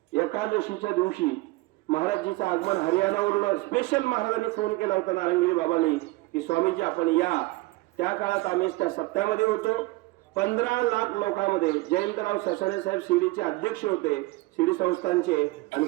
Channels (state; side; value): quieter; left; 21.3 dB